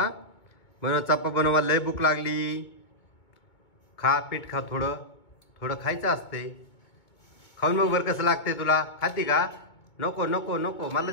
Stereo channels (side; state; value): right; late; 2.2 ms